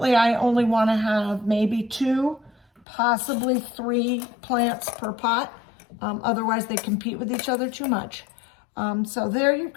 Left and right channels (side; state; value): right; drops out; at 2.9 s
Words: I only want to have maybe 2, possibly 3 plants per pot. Otherwise, they compete with each other too much. So there you've